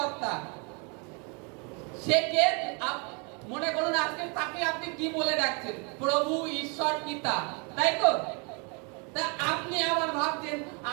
সে কে? মনে করুন আজকে তাকে আপনি কি বলে ডাকছেন? প্রভু, ঈশ্বর, পিতা, তাই তো? তা আপনি আবার ভাবছেন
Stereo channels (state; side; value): quieter; left; 33.5 dB